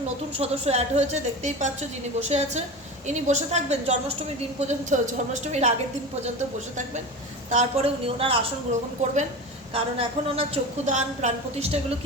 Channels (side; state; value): both; normal; correlation 0.29